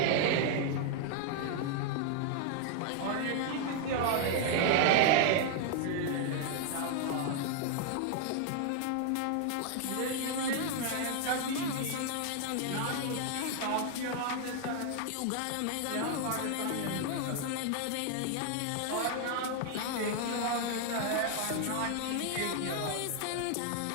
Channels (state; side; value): different; both; correlation 0.00